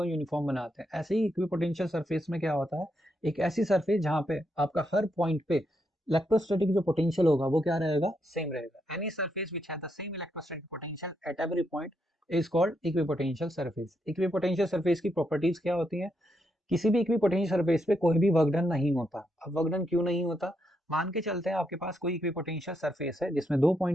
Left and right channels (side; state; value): both; normal; correlation 0.80